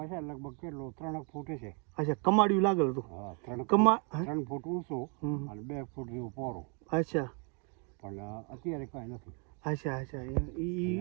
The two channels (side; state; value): left; quieter; 36.6 dB